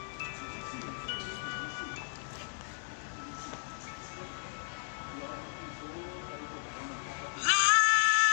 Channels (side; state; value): right; silent; digital silence